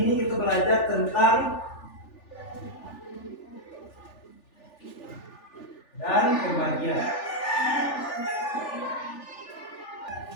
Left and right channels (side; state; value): right; late; 3.4 ms